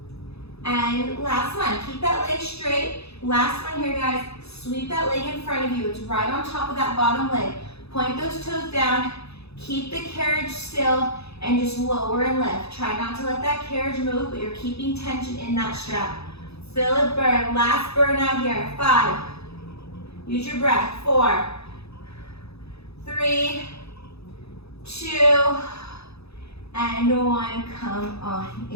and last one. Keep that leg straight. Last one here, guys. Sweep that leg in front of you. It's right on top of that bottom leg. Point those toes down. Keep the carriage still and just lower and lift. Try not to let that carriage move, but you're keeping tension in that strap. Feel it burn. Last burn out here. 5. Use your breath. 4, 3, 2, and 1. Come on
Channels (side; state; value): right; late; 0.79 ms